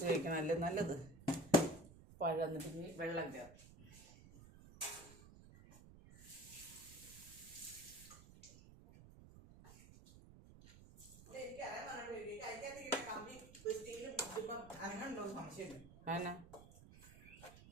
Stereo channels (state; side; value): noise; right; rumble, 18 dB below the sound